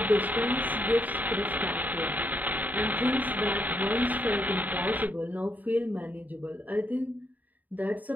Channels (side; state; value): left; late; 0.080 ms